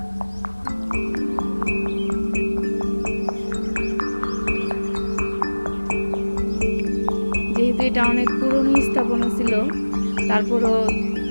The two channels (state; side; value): inverted; both; correlation -1.00